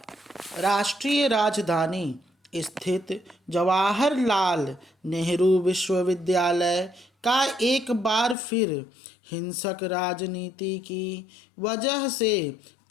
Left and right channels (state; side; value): drops out; right; at 8.3 s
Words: राष्ट्रीय राजधानी स्थित जवाहरलाल नेहरू विश्वविद्यालय का एक बार फिर हिंसक राजनीति की वजह से